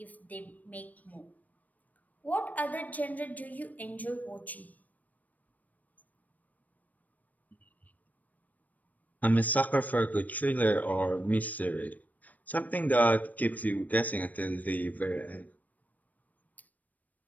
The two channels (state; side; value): late; right; 0.077 ms